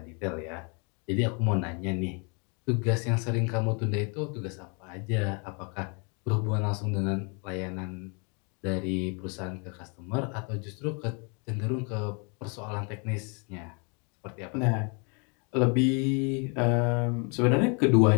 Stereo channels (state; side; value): quieter; right; 35.1 dB